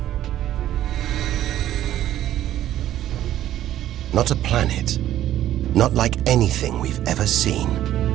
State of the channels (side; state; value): left; quieter; 12.6 dB